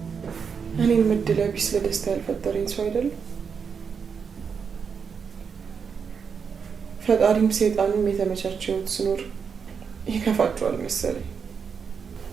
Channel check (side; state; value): left; quieter; 6.3 dB